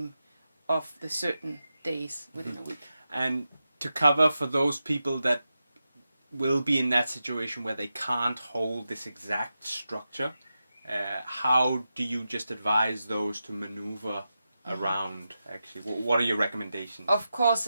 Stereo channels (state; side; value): inverted; both; correlation -0.90